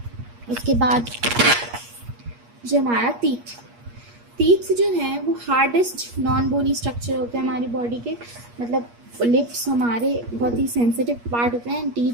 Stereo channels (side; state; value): left; late; 8.4 ms